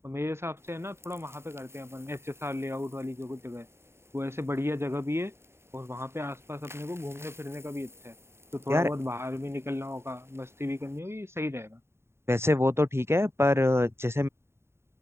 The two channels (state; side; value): late; left; 0.12 ms